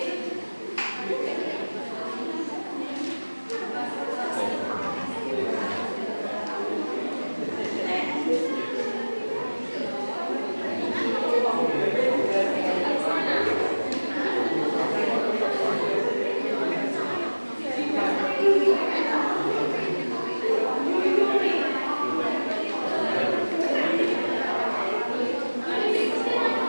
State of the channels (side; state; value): both; inverted; correlation -1.00